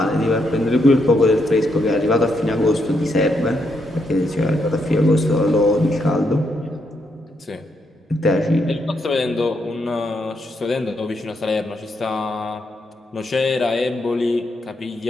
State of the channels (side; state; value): both; normal; correlation 0.78